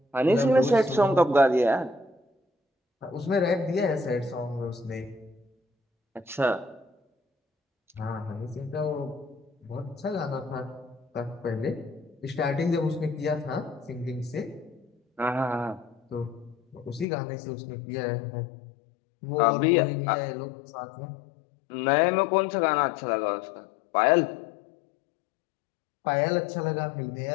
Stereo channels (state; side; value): drops out; right; at 17.1 s